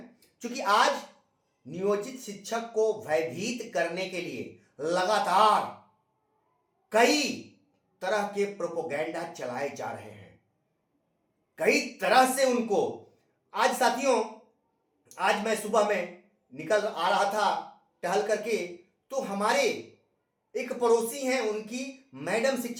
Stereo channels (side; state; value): both; identical; correlation 1.00